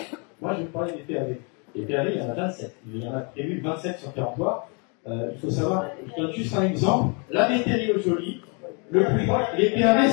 Moi, je vais parler des PAV. Les PAV, il y en a 27. Il y en a prévu 27 sur territoire. Il faut savoir, je donne juste un exemple. La météorologie, le plus proche, les PAV,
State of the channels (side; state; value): right; quieter; 35.5 dB